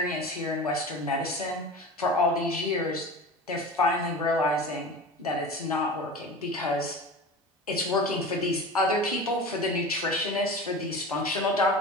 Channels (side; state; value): both; normal; correlation 0.33